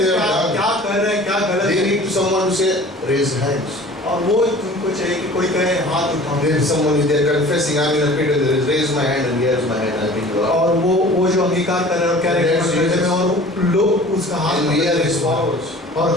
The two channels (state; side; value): normal; both; correlation 0.44